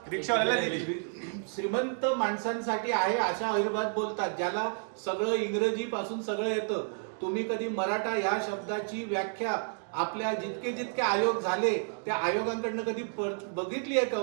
रिक्षावाल्याला दिली. श्रीमंत माणसांसाठी आहे अशा अहिर्भात बोलतात, ज्याला सगळं इंग्रजी पासून सगळं येतं. तुम्ही कधी मराठा या शब्दाची व्याख्या आपल्या जितके आयोग झाले त्या आयोगांकडनं कधी बघितली आहे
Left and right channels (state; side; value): silent; left; 57 dB below the other